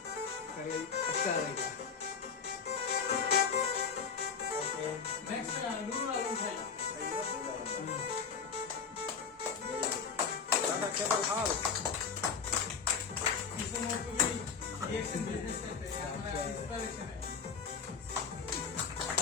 নেক্সট নুরুল আলম ভাই इसमें भी रिएक्शन बिजनेस करते हैं, हमारा इंस्पिरेशन है।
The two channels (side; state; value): right; quieter; 5.9 dB